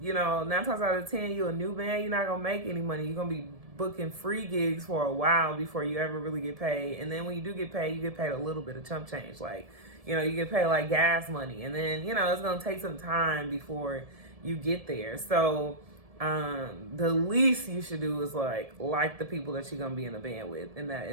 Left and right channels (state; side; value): late; left; 1.7 ms